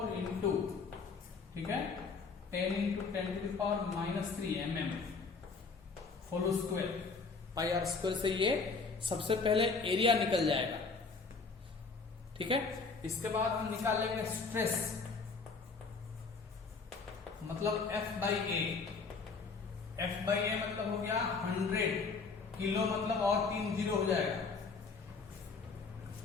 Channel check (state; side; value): quieter; right; 4.6 dB